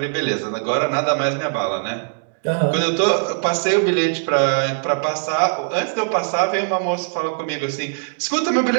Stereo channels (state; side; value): silent; left; 65 dB below the other